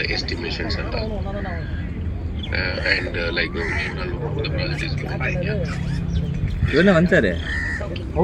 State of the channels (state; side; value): identical; both; correlation 1.00